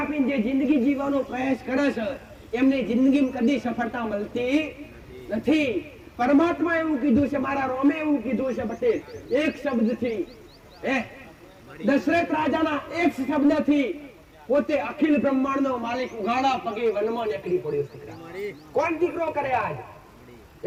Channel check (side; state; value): both; identical; correlation 1.00